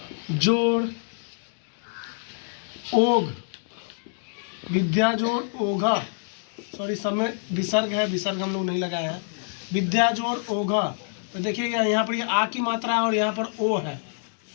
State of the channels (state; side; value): silent; right; 61 dB below the other